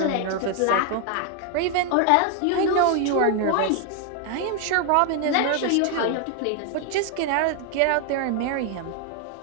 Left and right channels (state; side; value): different; both; correlation 0.00